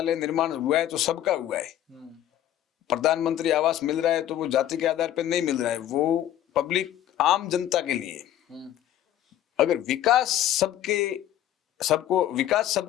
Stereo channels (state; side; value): quieter; right; 12.0 dB